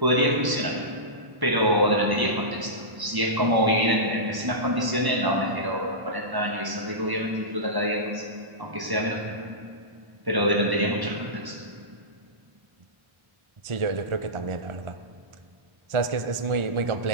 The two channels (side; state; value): left; late; 1.0 ms